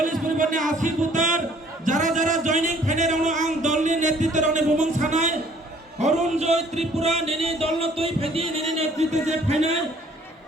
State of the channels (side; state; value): both; normal; correlation 0.58